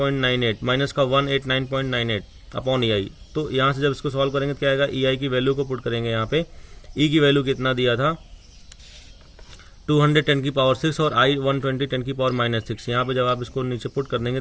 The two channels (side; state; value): both; identical; correlation 1.00